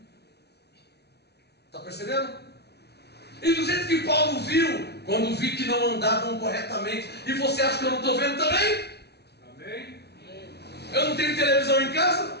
Está percebendo? E do jeito que Paulo viu, quando vi que não andavam corretamente, e você acha que eu não estou vendo também? Amém? Eu não tenho televisão em casa?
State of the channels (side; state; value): right; late; 0.49 ms